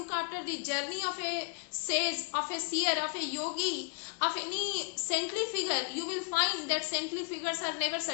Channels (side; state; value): right; quieter; 37.9 dB